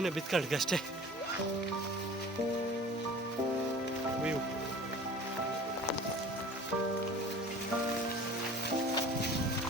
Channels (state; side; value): normal; both; correlation 0.43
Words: ಬಿತ್ಕಳ್ಗೆ ಅಷ್ಟೇ. View